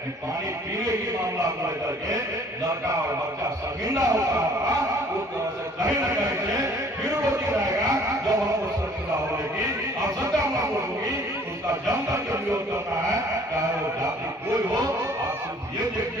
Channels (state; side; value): normal; both; correlation 0.55